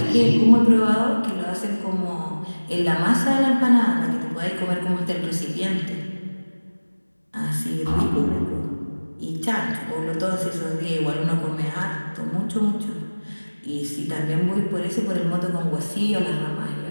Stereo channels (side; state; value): both; inverted; correlation -1.00